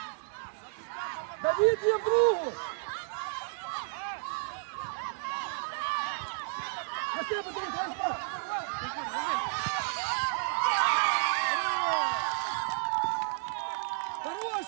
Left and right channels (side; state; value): left; silent; 57 dB below the other